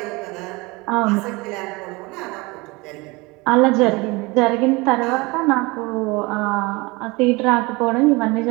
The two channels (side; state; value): left; quieter; 24.6 dB